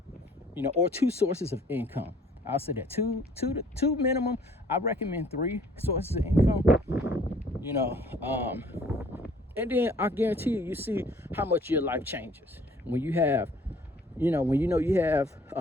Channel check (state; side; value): normal; both; correlation 0.57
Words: or 2 sources of income. I'll say that two minimum. I recommend 3 sources of income, and then I guarantee you see how much your life changes when you have, when you have